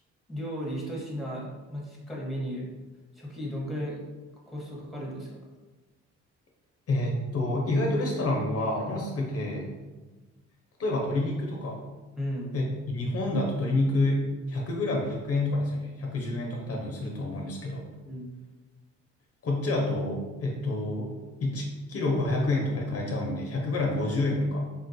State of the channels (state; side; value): normal; both; correlation 0.62